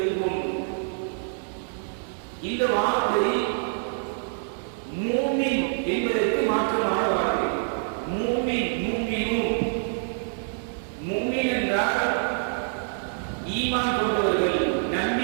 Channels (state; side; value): silent; left; digital silence